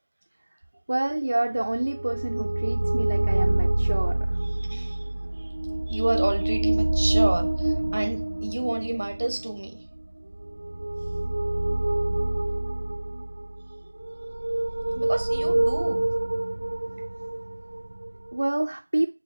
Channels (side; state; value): both; inverted; correlation -1.00